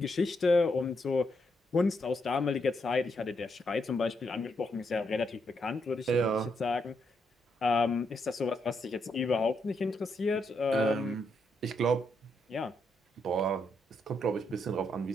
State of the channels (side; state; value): both; normal; correlation 0.79